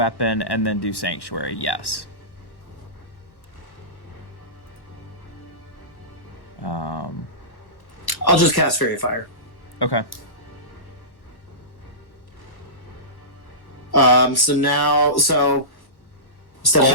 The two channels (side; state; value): right; late; 1.1 ms